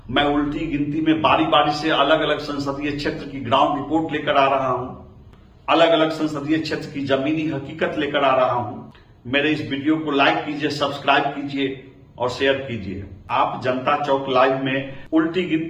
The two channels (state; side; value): identical; both; correlation 1.00